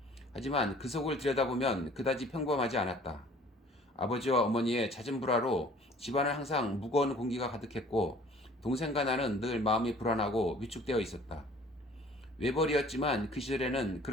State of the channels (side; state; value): both; normal; correlation 0.52